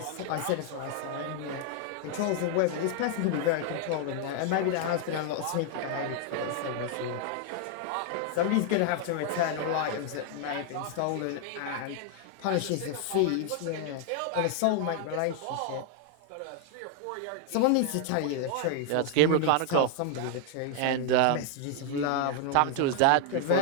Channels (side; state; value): both; different; correlation 0.00